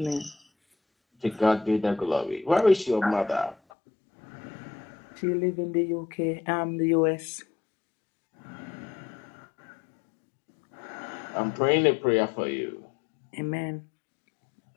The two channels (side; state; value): right; drops out; at 3.6 s